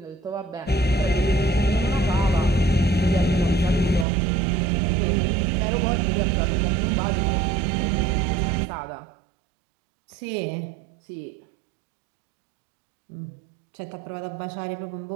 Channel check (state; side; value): drops out; left; at 4.0 s